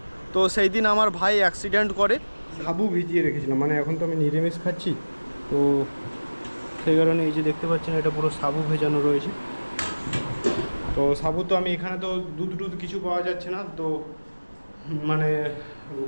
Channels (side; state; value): both; inverted; correlation -1.00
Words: তো সেই দিন আমার ভাই অ্যাক্সিডেন্ট করে। সাবু ভিজিয়ে রেখেছিলাম, মানে এখন তো আমি নিরামিষ খাচ্ছি, তো সেই কারণে এই যে দেখতে পাচ্ছেন এটা পুরো সাবু ভেজানো রয়েছে। তো সাবু তো আমি এখানে তো দুধ কিছু পাওয়া যাচ্ছে না, তো মানে